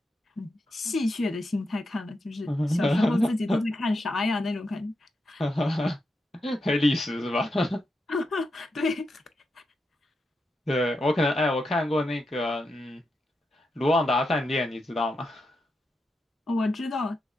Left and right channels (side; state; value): both; normal; correlation 0.86